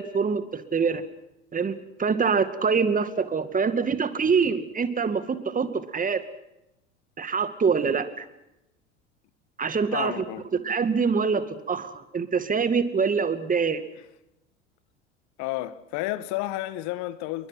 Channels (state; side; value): quieter; left; 4.3 dB